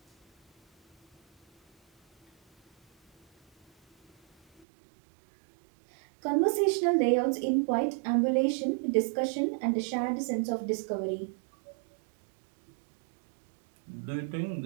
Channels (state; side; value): drops out; left; at 4.7 s